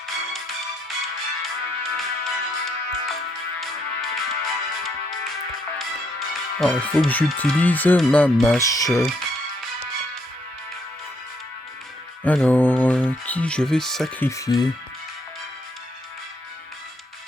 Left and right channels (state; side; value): normal; both; correlation 0.73